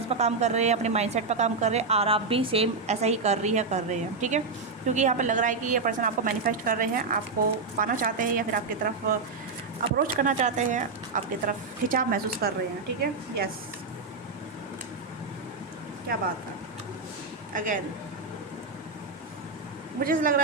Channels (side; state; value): left; quieter; 4.2 dB